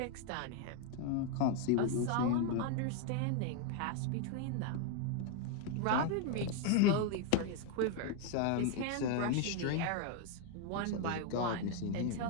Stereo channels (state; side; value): different; both; correlation 0.01